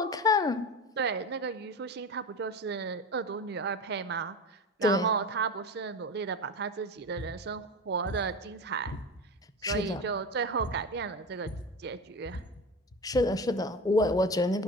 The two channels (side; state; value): both; normal; correlation 0.27